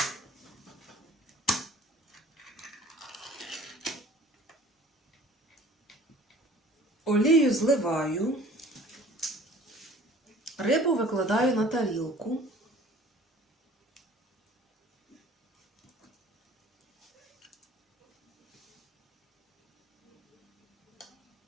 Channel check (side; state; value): both; normal; correlation 0.49